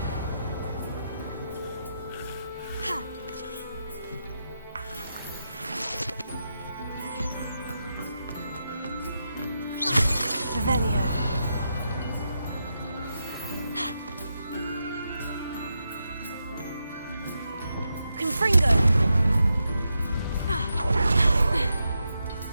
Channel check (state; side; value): inverted; both; correlation -0.86